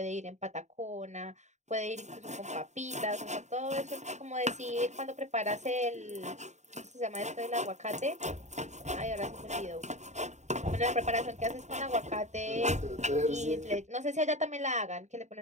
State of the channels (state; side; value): late; left; 0.34 ms